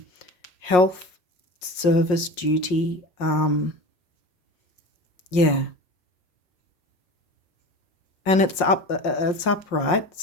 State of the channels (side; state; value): right; late; 5.5 ms